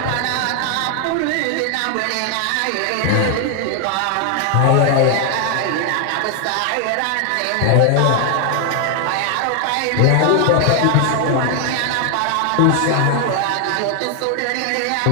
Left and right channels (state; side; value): different; both; correlation 0.00